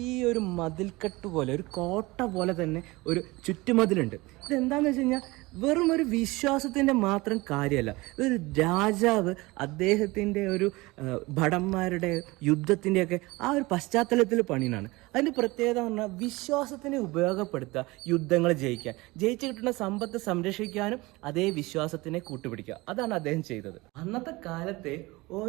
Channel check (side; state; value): left; quieter; 22.2 dB